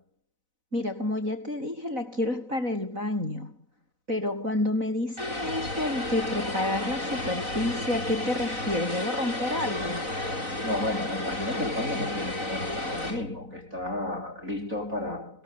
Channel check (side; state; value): left; late; 4.0 ms